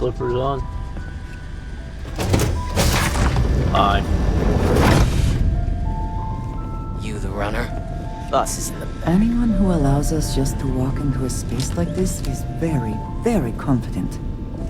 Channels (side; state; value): both; identical; correlation 1.00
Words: on? Aye. You the runner? Boss is in the back. Anyone who allows us just to walk into a space like this is very, very confident.